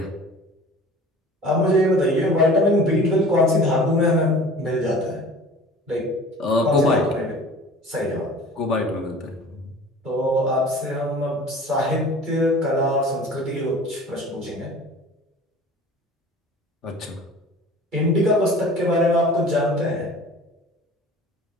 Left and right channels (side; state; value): both; normal; correlation 0.43